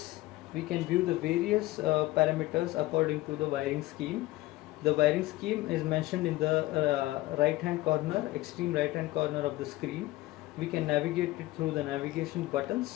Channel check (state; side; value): quieter; right; 18.3 dB